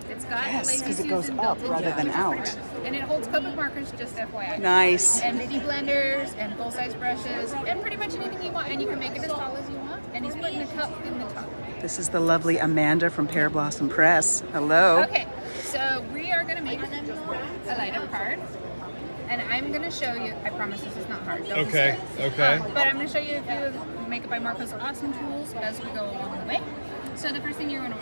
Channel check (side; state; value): both; inverted; correlation -1.00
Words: It's got Yes, lazy 'cause it goes Susan up built rather into than it, which is out. pretty bad. And it holds Copic markers, just FYI. Nice. And mini blenders and full-size brushes and pretty much anything you want. And you can make it as tall as you want. And he's putting a cup in the top. This is the lovely Amanda from Pear Blossom Press. Hello. Okay, so we are going to make a light-up card. And I'm going to show you, I promise this is not hard. Don't be Okay, scared. okay. But I'm going to show you a few of Make It by Marko's awesome tools as we go along the way. So the first thing you're going to